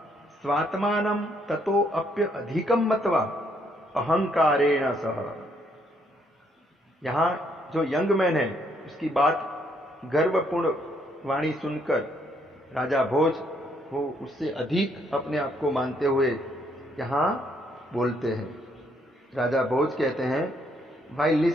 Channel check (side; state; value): both; normal; correlation 0.70